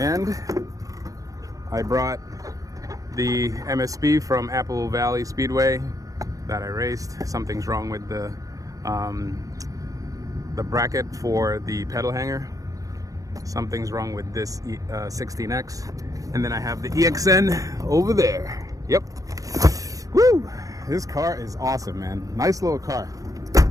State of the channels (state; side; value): late; left; 0.17 ms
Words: I brought the MSP from Apple Valley Speedway that I raced. Something's wrong with the bracket for the pedal hanger. Something's wrong with this 16X. And then I have the EXN over there. Yep. Woo! This car is awesome, man. Nice little car.